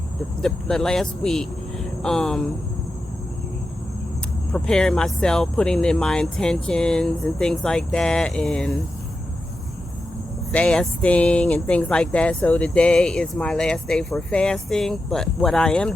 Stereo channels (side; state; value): both; normal; correlation 0.90